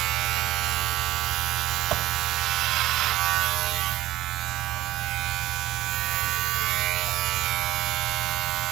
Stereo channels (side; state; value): left; quieter; 15.8 dB